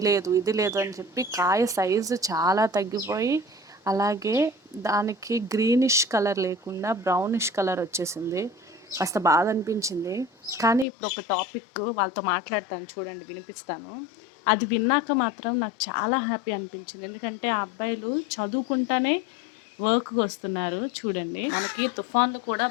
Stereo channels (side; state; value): right; drops out; at 10.9 s